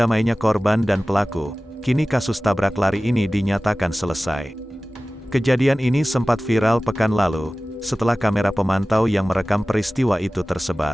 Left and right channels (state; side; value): normal; both; correlation 0.97